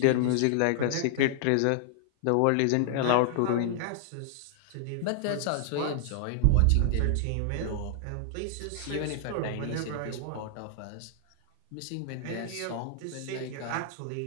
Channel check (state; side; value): different; both; correlation -0.01